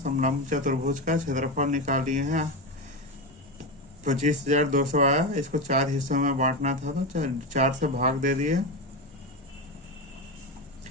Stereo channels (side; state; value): both; normal; correlation 0.16